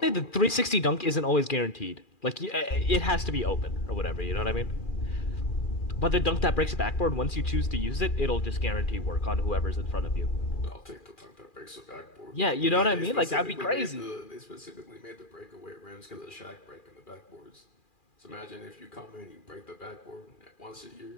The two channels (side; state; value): right; late; 2.4 ms